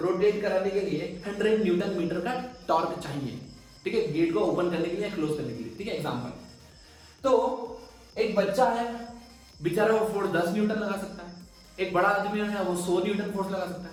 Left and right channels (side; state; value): both; identical; correlation 1.00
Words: कराने के लिए 100 न्यूटन मीटर का टॉर्क चाहिए। ठीक है, गेट को ओपन करने के लिए, क्लोज करने के लिए। ठीक है, एग्जांपल। तो एक बच्चा है, बेचारा वो फोर्स 10 न्यूटन लगा सकता है। एक बड़ा आदमी है, वो 100 न्यूटन फोर्स लगा सकता